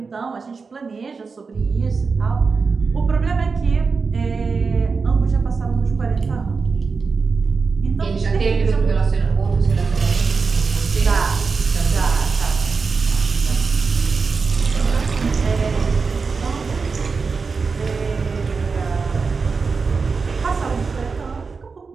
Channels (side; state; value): left; quieter; 4.8 dB